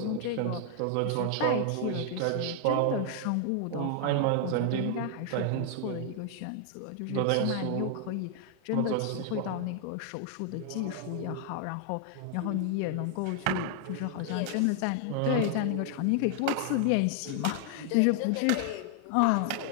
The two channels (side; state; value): both; different; correlation 0.00